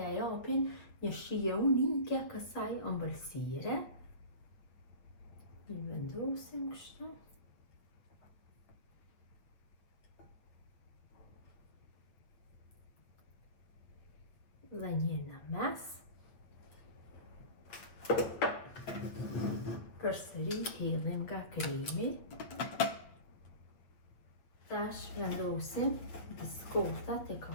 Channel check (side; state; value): right; late; 8.4 ms